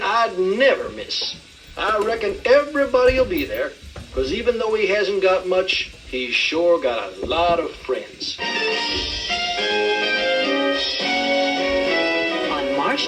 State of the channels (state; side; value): identical; both; correlation 1.00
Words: I'd never miss. I reckon everybody will be there, because even though he hasn't got much, he's sure got a lot of friends. On March